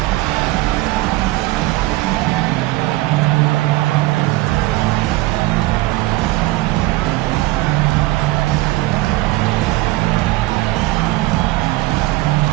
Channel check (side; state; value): left; quieter; 19.2 dB